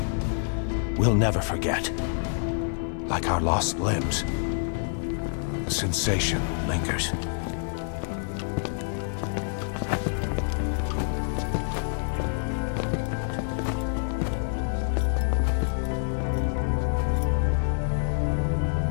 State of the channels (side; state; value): right; silent; 60 dB below the other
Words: we'll never forget. Like our lost limbs, the sensation lingers.